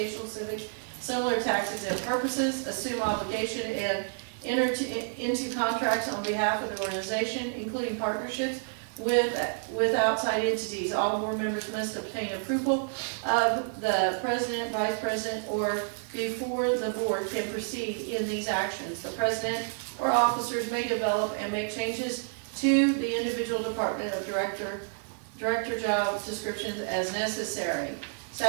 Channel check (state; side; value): silent; left; 56 dB below the other